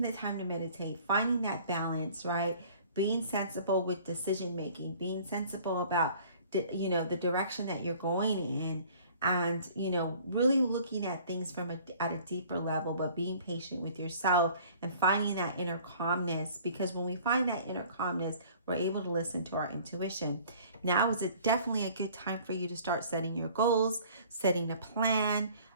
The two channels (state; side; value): inverted; both; correlation -0.51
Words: the time to meditate, finding that balance, right? Being sensible with decision making, being sensible about the direction that you're going in, and really looking at things at a deeper level, but being patient with yourself and finding that inner calmness, because when we find that inner calmness, we're able to listen to our intuition. Now is definitely a good time for you to start setting your goals, setting a plan,